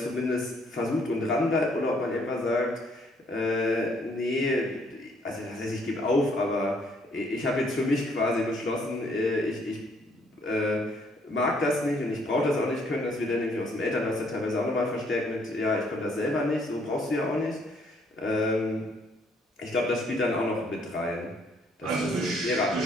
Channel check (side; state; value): both; normal; correlation 0.66